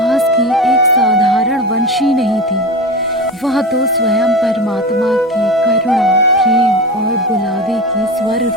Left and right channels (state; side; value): normal; both; correlation 0.26